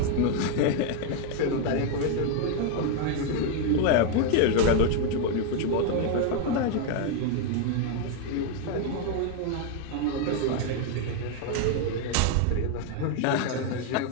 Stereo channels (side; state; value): both; different; correlation 0.01